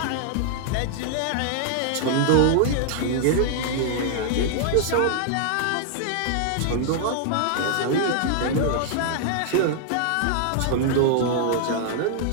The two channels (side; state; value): both; different; correlation -0.01